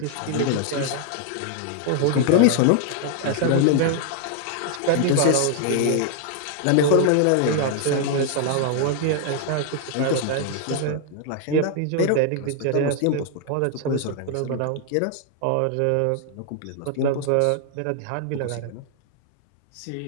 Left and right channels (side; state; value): both; different; correlation 0.00